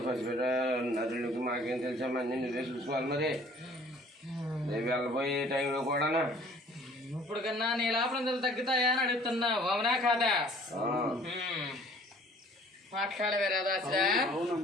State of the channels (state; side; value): normal; both; correlation 0.53